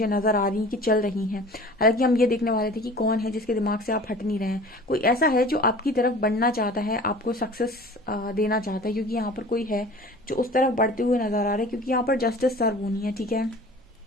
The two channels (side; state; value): both; normal; correlation 0.43